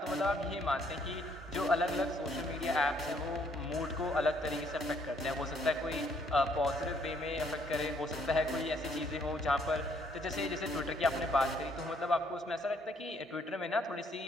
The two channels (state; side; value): normal; both; correlation 0.67